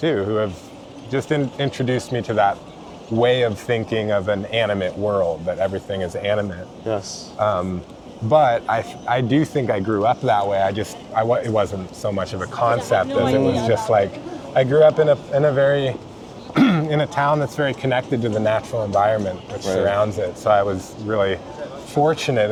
who have just introduced me to that way of thinking of an animate world, that everything is animate. Yes. But I do think I grew up that way. It wasn't so much of a concept as it was just like, I grew up in a very, in a town that's very connected to the natural environment which surrounds it. So I was really fortunate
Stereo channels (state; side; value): identical; both; correlation 1.00